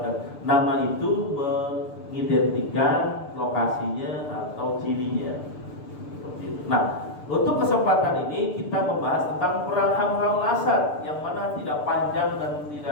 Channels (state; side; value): late; right; 6.8 ms